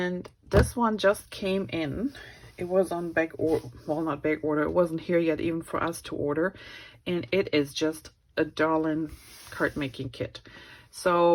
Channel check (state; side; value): identical; both; correlation 1.00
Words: this one just came in. It was on back order, well, not back order, it wasn't here yet even for us to order, and it is just a darling card making kit.